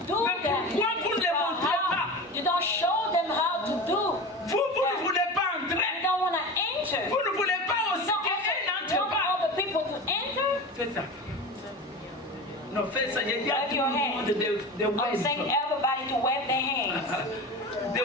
do Mais that. pourquoi vous ne le But montrez how? pas? You don't show them how to do. Vous ne voulez pas You entrer. don't want to enter. Vous ne voulez pas You aussi don't qu'elle also n'entre want pas. all the people to enter. Fais ça. Non, fais ça. J'ai dit à Wave tout your le monde hand. de I'm saying wave. everybody to wave their hands. De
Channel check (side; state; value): both; normal; correlation 0.29